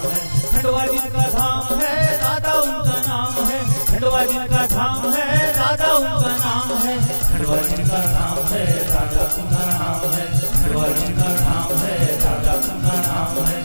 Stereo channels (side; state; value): both; inverted; correlation -1.00